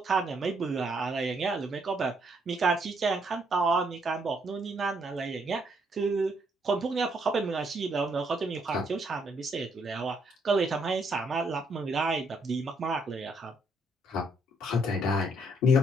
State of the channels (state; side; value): normal; both; correlation 0.72